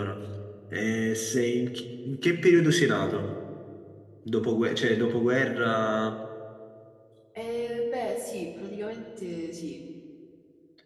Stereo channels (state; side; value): identical; both; correlation 1.00